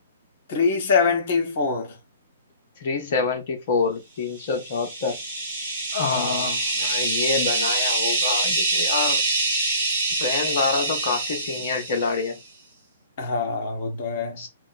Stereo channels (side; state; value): both; inverted; correlation -0.46